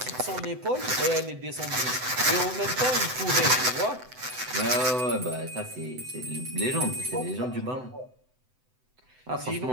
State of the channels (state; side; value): late; left; 7.9 ms